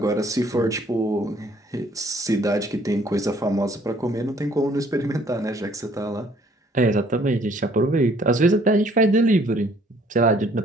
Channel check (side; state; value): both; normal; correlation 0.61